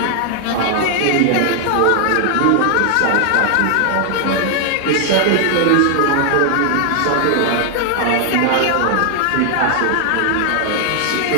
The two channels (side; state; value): both; different; correlation 0.00